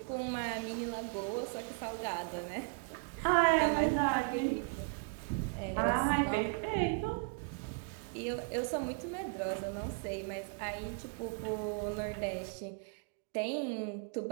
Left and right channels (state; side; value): quieter; left; 33.6 dB